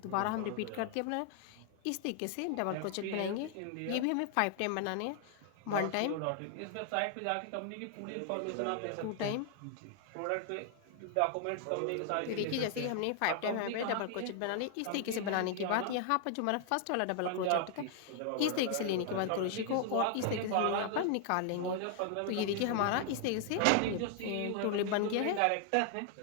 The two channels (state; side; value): different; both; correlation 0.00